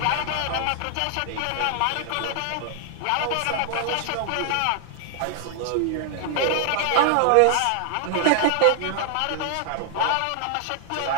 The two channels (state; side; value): different; both; correlation 0.00